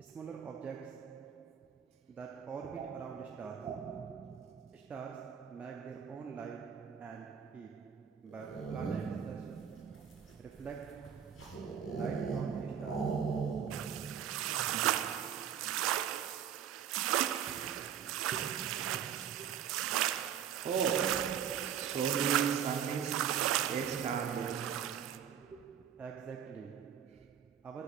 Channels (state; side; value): quieter; left; 8.7 dB